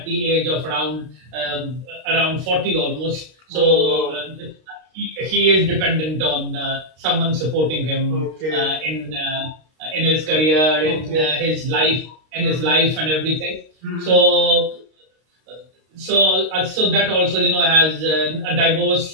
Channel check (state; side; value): late; left; 32 ms